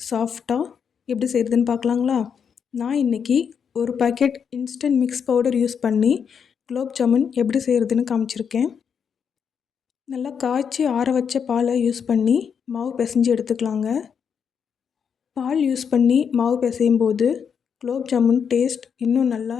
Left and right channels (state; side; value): quieter; right; 7.0 dB